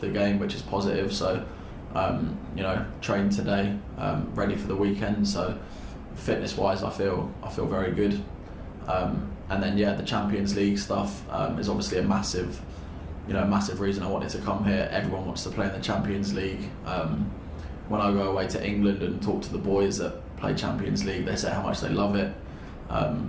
the game, which is positive. So, trained today, ready for the weekend. So, fitness-wise, I feel very good. And then, the Champions League stuff is obviously a massive reason I wanted to come here. Everyone wants to play in the Champions League. When I go away to England and talk to the boys that play Champions League, they say how much they love it.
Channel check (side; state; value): both; identical; correlation 1.00